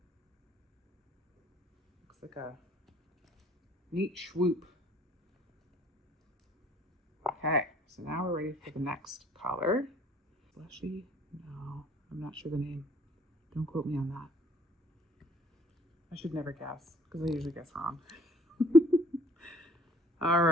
Looks like a neat swoop. Okay, so now we're ready for the next color. Fleshy? No, I'm not sure the name. Don't quote me on that. I should never guess because I usually guess wrong. All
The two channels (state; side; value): normal; both; correlation 0.58